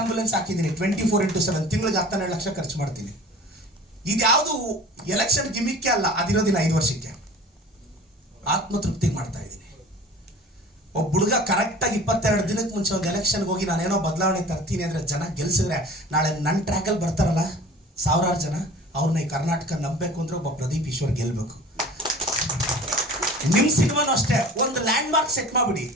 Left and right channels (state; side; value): normal; both; correlation 0.42